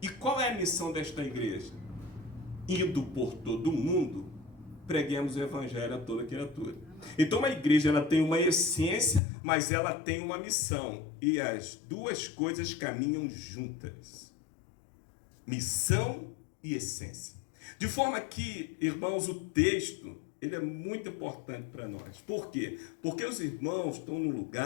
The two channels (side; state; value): right; drops out; at 9.2 s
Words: E qual é a missão desta igreja? Indo por todo o mundo, preguemos o evangelho a toda criatura. Então a igreja ela tem uma essência, mas ela tem uma missão. E as duas coisas caminham juntas. Missão e essência. De forma que, irmãos, o texto ele é muito importante para nós. Por quê? Porque os irmãos estão num